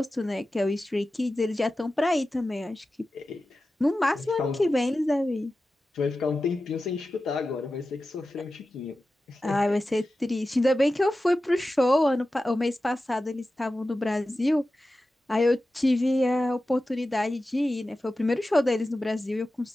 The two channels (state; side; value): normal; both; correlation 0.94